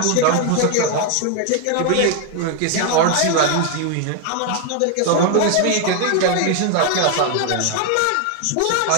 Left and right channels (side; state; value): both; different; correlation 0.00